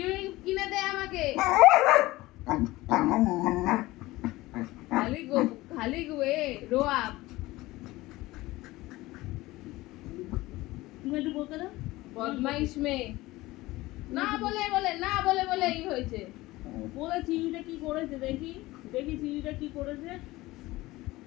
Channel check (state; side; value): quieter; right; 19.0 dB